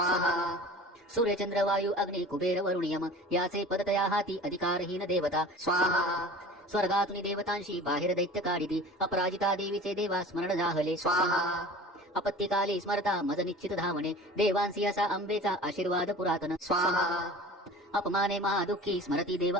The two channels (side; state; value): both; normal; correlation 0.40